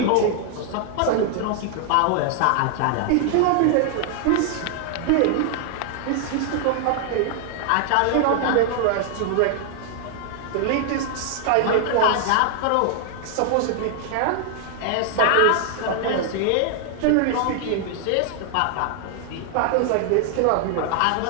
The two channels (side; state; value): both; different; correlation 0.00